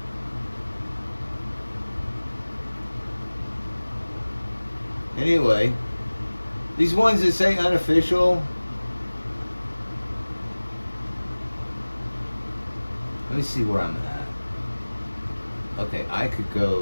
anyway, these ones that say unofficial. Let me see where I'm at. Okay, I could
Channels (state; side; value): inverted; both; correlation -1.00